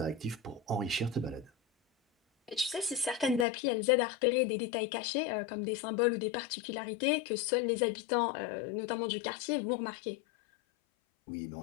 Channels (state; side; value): drops out; right; at 3.5 s